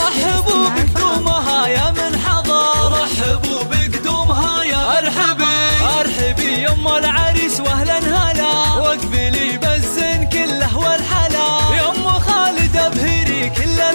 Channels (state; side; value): inverted; both; correlation -1.00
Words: بقدومها يا من حضر، رحبوا بقدومها يا ارحبي يا ام العريس واهلا هلا. واقبلي بالزين كله والحلا، يا ام خالد ابهري كل